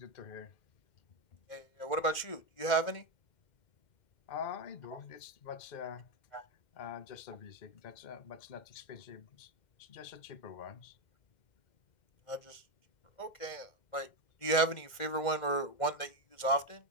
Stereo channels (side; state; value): right; late; 2.1 ms